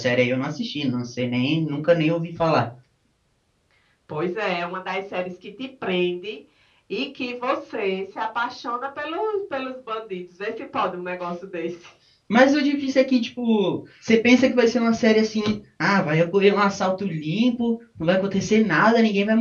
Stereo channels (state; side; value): identical; both; correlation 1.00